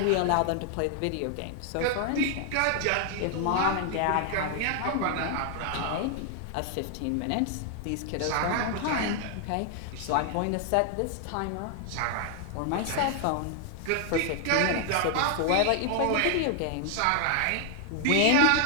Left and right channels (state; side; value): different; both; correlation 0.00